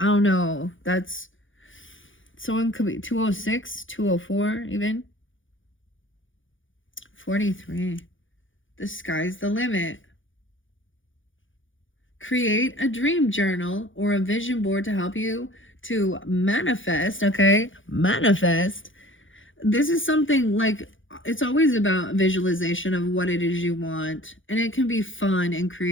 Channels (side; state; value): right; late; 0.57 ms